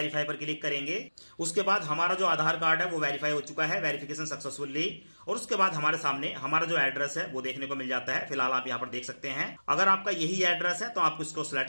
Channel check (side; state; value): both; inverted; correlation -1.00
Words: पर क्लिक करेंगे। उसके बाद हमारा जो आधार कार्ड है वो वेरीफाई हो चुका है, वेरिफिकेशन सक्सेसफुली। और उसके बाद हमारे सामने हमारा जो एड्रेस है वो देखने को मिल जाता है। फिलहाल आप यहाँ पर देख सकते हैं, अगर आपका यही एड्रेस है तो आप इसको